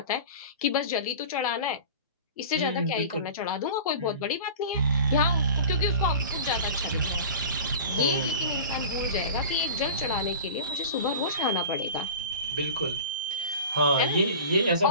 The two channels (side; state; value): both; inverted; correlation -0.37